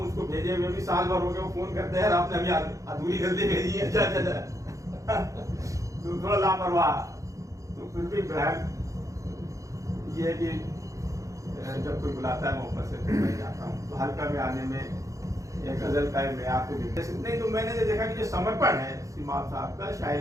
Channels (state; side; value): late; left; 0.16 ms